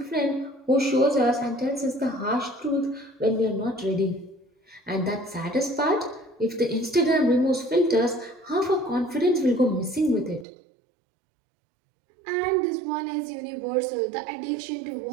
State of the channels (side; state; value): left; drops out; at 10.5 s